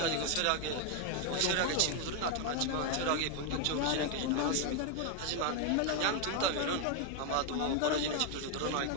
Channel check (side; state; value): both; different; correlation 0.01